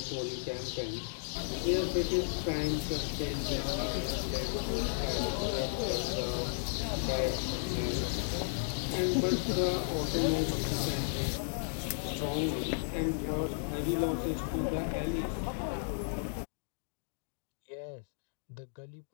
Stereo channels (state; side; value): silent; right; digital silence